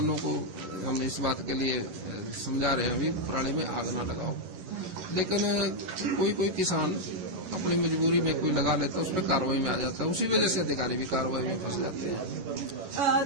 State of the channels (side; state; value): left; late; 11 ms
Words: को हम इस बात के लिए समझा रहे हैं अभी प्रणाली में आग ना लगाओ, लेकिन कोई किसान अपनी मजबूरी में कोई लगा लेता है, उस पर कार्रवाई में आ जाता है। उसी वजह से अधिकारी भी कार्रवाई में फंस जाते